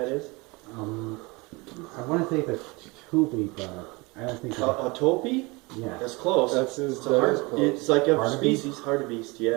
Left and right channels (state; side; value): quieter; left; 25.7 dB